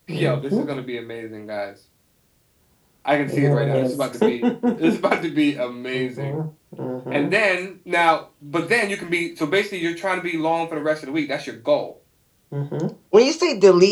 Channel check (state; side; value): identical; both; correlation 1.00